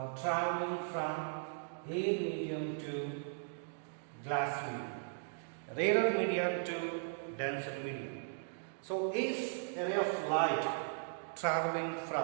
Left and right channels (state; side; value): silent; left; digital silence